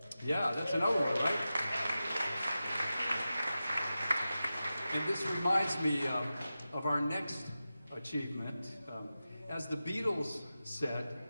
Yeah, that's another one, right? And this reminds me of our next achievement. As the Beatles said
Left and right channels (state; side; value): inverted; both; correlation -0.93